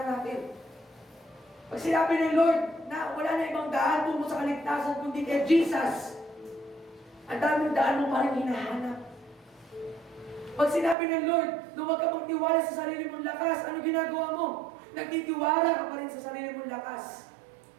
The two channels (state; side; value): drops out; left; at 11.0 s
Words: natin. Pag sinabi ng Lord na wala na ibang daan tungo sa kaligtasan kundi kay Jesus, ang daming daan mo pa rin hinahanap. Pag sinabi ng Lord na huwag ka magtiwala sa sarili mong lakas, ano ginagawa mo? Nagtitiwala ka pa rin sa sarili mong lakas.